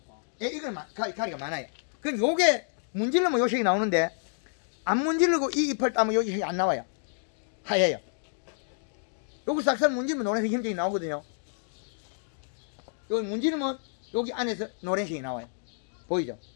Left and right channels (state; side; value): silent; right; digital silence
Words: 예, 이건 가리가 많아요. 그럼 요게 문질르면 요 색이 나오는데 안 문질르고 이 잎을 따면 요 색이 안 나와요. 하얘요. 요거 싹싹 문질르면 노란색 힘색이 나오거든요. 여기 문지르면 여기 안에서 노란색이 나와요. 보이죠?